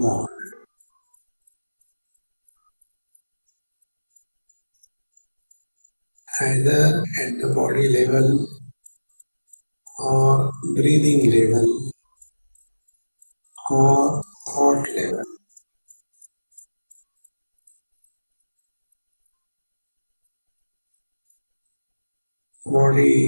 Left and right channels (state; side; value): inverted; both; correlation -1.00